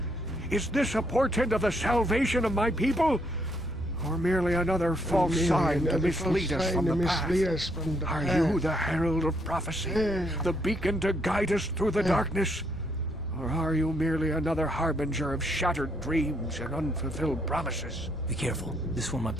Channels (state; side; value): normal; both; correlation 0.73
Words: Is this a portent of the salvation of my people? Or merely another false sign to mislead us from the path? Are you the herald of prophecy? The beacon to guide us through the darkness? Or are you merely another harbinger of shattered dreams and unfulfilled promises? Be careful. This one might